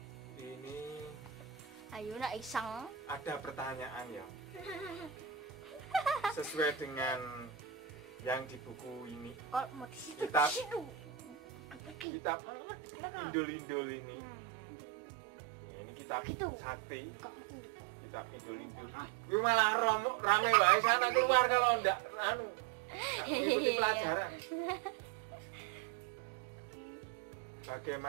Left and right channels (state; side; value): drops out; left; at 12.1 s